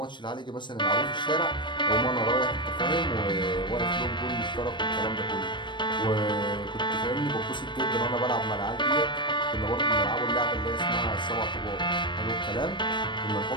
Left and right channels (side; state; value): right; late; 0.22 ms